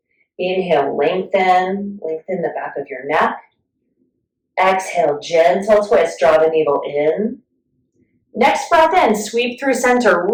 Inhale, lengthen the back of your neck. Exhale, gentle twist, draw the navel in. Next breath in, sweep through center,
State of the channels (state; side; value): identical; both; correlation 1.00